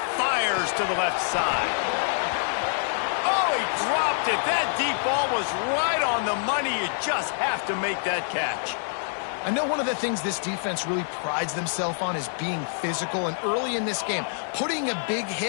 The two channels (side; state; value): right; silent; 61 dB below the other